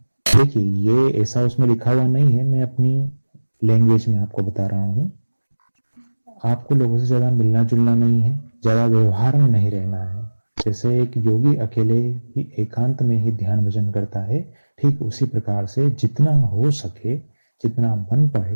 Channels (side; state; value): both; inverted; correlation -1.00